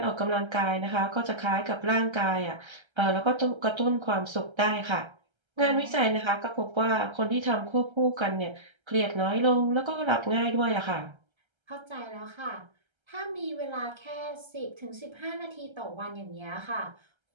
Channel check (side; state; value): left; late; 1.3 ms